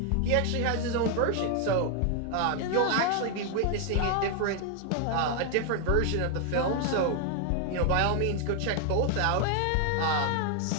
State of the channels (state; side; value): different; both; correlation 0.00